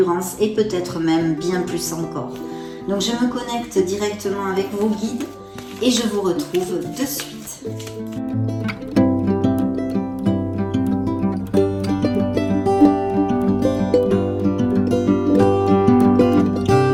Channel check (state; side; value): identical; both; correlation 1.00